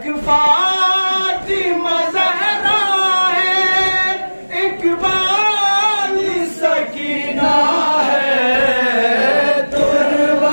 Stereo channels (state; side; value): inverted; both; correlation -1.00